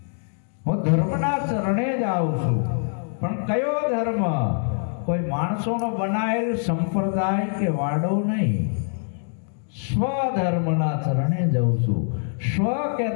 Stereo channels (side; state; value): right; silent; 63 dB below the other